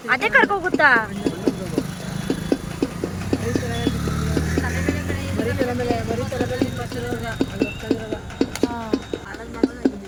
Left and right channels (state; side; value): identical; both; correlation 1.00